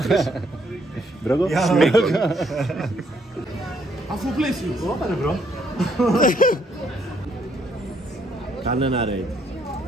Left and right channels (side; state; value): both; normal; correlation 0.70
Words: Μπρόγκο. Σμίκος. Αφού πλαίσιο. Όπα ρε μπρο. Κάνε ένα raid.